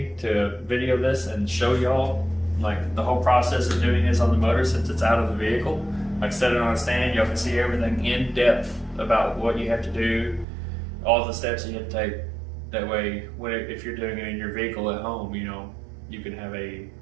to video this and show y'all like the whole process of doing this on the motor since it's out of the vehicle. Like set it on a stand, y'all can see everything in depth about what you have to do, all the steps you have to take. That way, if you're doing it in your vehicle at home, you know, you can have a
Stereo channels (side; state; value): left; drops out; at 10.5 s